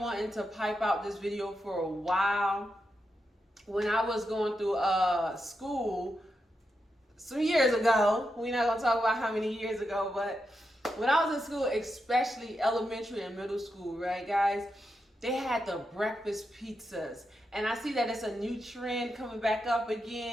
to pipe out this video for a while. When I was going through school some years ago, we're not gonna talk about how many years ago, but when I was in school, especially elementary and middle school, right, guys, they had the breakfast pizzas. And I see that it's a new trend coming back up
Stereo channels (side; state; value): both; normal; correlation 0.86